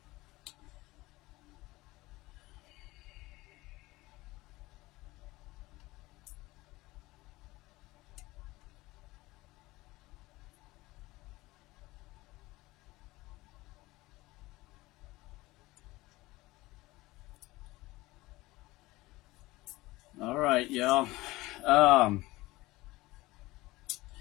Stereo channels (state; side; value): quieter; right; 19.7 dB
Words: All right, y'all. Um,